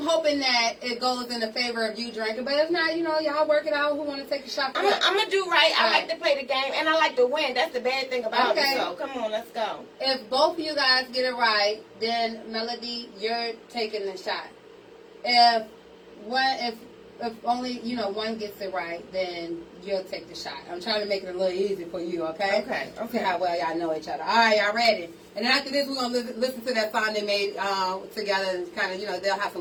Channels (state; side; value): identical; both; correlation 1.00